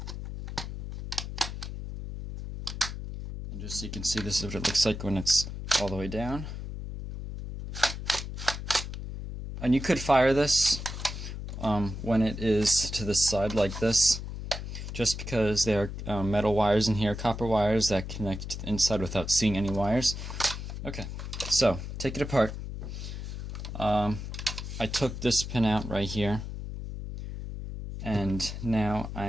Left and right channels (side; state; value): left; noise; hum, 7 dB below the sound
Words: And just so you can see, this is what it looks like when it's all the way down. And you could fire this when it is to the side like this, just because there are metal wires in here, copper wires that connect to the inside without seeing any wires. Okay, so take it apart. I took this pin out right here, and now